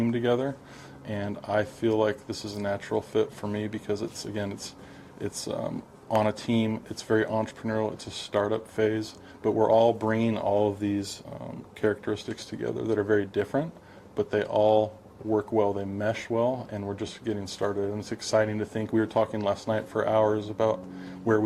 together, and I feel like this is a natural fit for me, because it's on a team. It's very entrepreneurial. It's a startup phase, but we're all bringing all of these characteristics together that are very different, but they all work well, they mesh well, and we're just getting started. And it's exciting to think. We were talking last night for hours about where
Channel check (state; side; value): identical; both; correlation 1.00